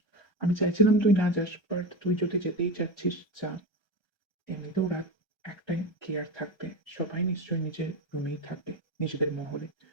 আমি চাইছিলাম তুই না যাস, বাট তুই যদি যেতেই চাচ্ছিস যা। এমনিতেও রাত একটাই, কি আর থাকবে, সবাই নিশ্চয়ই নিজের রুমেই থাকবে, নিজেদের মহলে।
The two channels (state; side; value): late; right; 1.3 ms